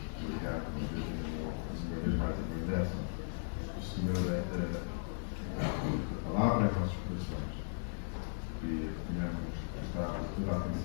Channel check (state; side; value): silent; right; digital silence